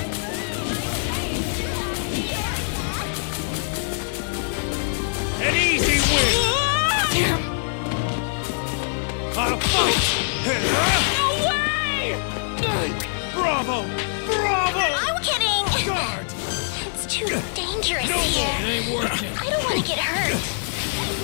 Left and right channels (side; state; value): right; silent; digital silence